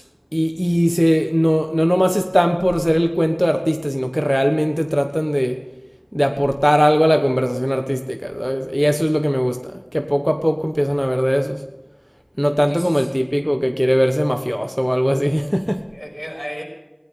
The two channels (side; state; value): both; identical; correlation 1.00